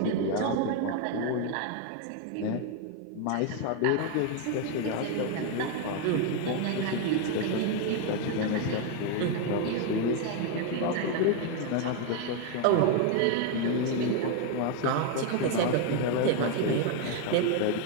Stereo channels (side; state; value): both; different; correlation 0.01